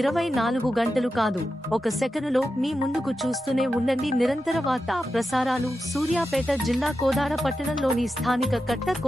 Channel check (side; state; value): both; normal; correlation 0.90